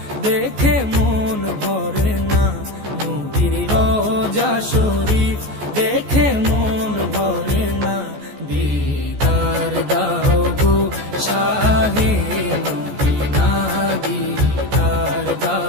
দেখে মন ভরে না, নবীর রোজা শরীফ দেখে মন ভরে না, দিদার দাও গো শাহে মদিনা, দিদার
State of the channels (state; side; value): late; left; 14 ms